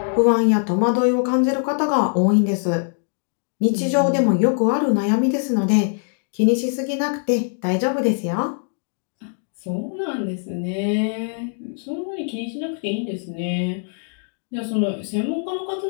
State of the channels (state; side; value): silent; right; 64 dB below the other